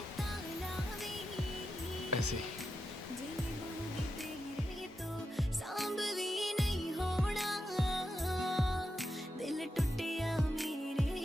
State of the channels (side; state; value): both; normal; correlation 0.87